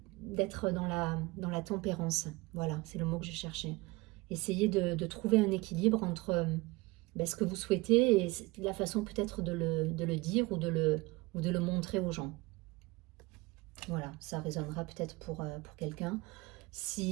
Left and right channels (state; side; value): quieter; left; 22.9 dB